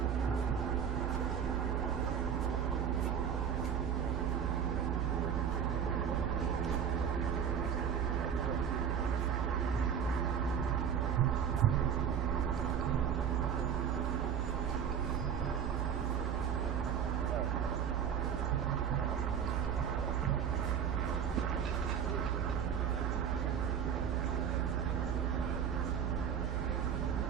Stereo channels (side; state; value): left; quieter; 8.0 dB